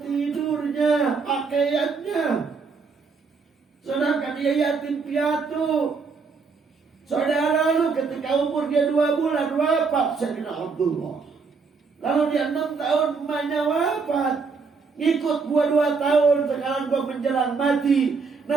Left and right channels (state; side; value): quieter; left; 4.9 dB